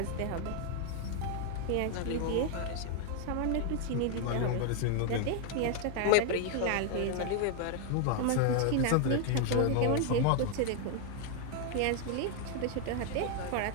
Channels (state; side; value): different; both; correlation 0.01